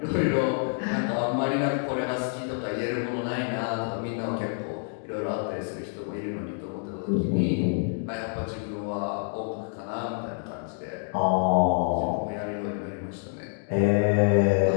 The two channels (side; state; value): right; silent; 58 dB below the other